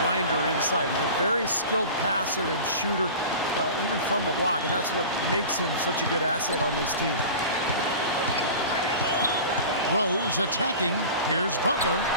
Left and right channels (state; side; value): inverted; both; correlation -0.35